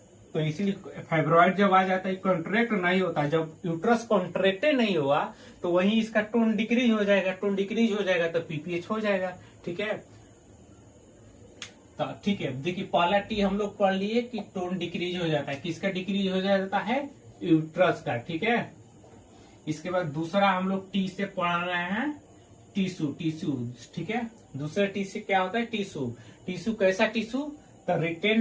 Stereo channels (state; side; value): identical; both; correlation 1.00